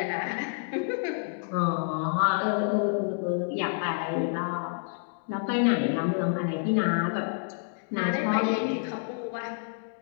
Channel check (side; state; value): right; silent; digital silence